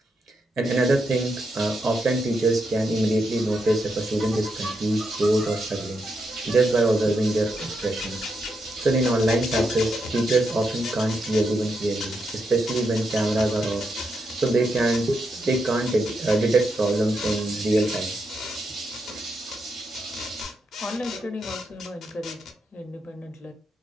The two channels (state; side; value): normal; both; correlation 0.82